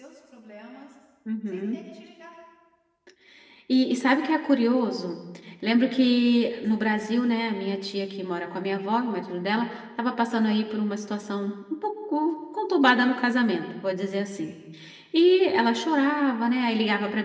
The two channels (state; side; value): identical; both; correlation 1.00